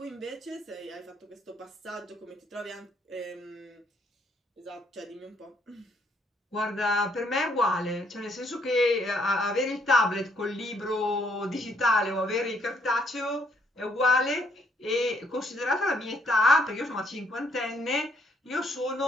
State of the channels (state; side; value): normal; both; correlation 0.70